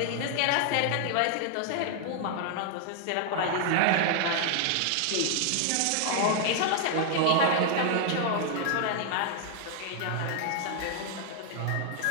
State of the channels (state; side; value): different; both; correlation 0.00